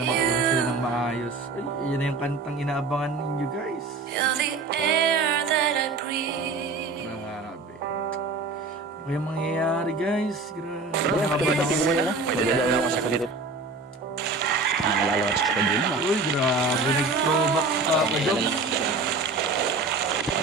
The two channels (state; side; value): quieter; left; 3.7 dB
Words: magkaroon sila ng maayos. Ay, yun na yung kantang inaabangan ninyo guys. You're the air that I breathe. Grabe. Ano kayang mangyayari guys? Grabe. Pwede na lang ako sa kulit. Nalalawas ko pa din. Uy, grabe. Nag-throwback si Papa Joms.